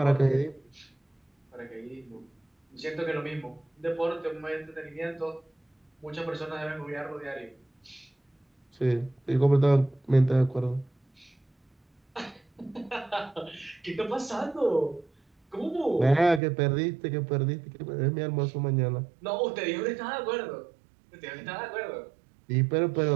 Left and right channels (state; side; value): drops out; left; at 16.4 s